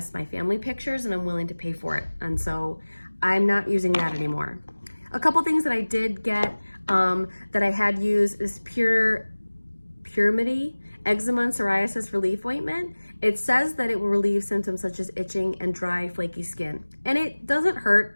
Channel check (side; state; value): both; inverted; correlation -1.00